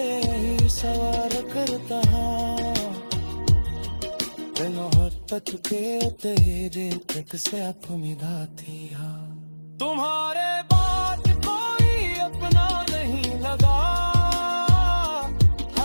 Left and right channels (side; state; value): both; inverted; correlation -1.00